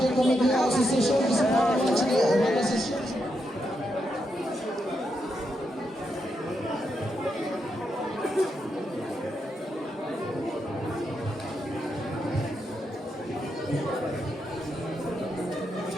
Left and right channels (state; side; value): normal; both; correlation 0.83